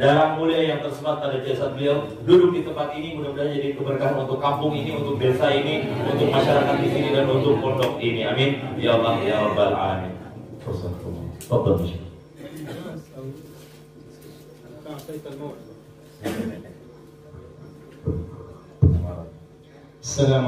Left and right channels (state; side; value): identical; both; correlation 1.00